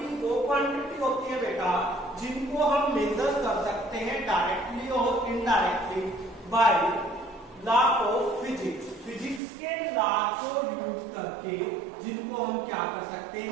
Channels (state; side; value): drops out; left; at 9.4 s